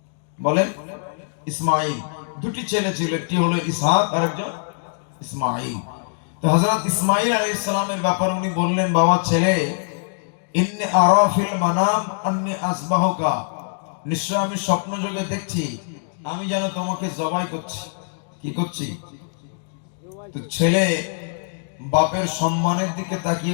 বলেন? ইসমাঈল। দুটি ছেলে ছিল, একটি হলো ইসহাক আর একজন ইসমাঈল। তো হযরত ইসমাঈল আলাইহিস সালামের ব্যাপারে উনি বললেন, বাবা ছেলে, ইন্নী আরা ফিল মানাম আন্নী আসবাহুকা, নিশ্চয় আমি স্বপ্ন যোগে দেখছি আমি যেন তোমাকে জবাই করছি। কি করছি? তো ছেলে বাপের সম্মানের দিকে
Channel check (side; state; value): right; silent; digital silence